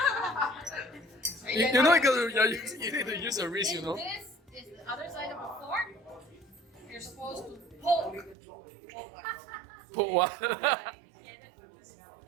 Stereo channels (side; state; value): left; drops out; at 8.3 s